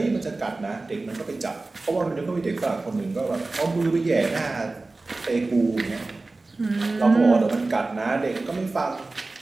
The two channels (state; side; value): quieter; left; 3.3 dB